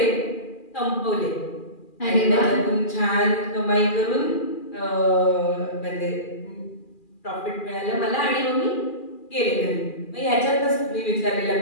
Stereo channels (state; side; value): late; right; 2.4 ms